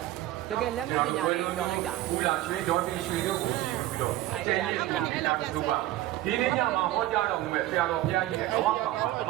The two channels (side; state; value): left; quieter; 15.3 dB